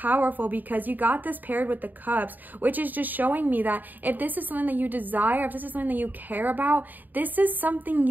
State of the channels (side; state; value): left; late; 0.087 ms